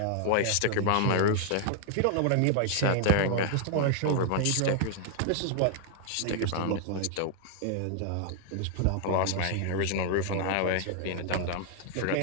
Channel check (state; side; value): different; both; correlation 0.00